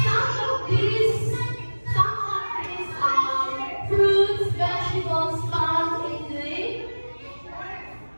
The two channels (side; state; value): both; inverted; correlation -1.00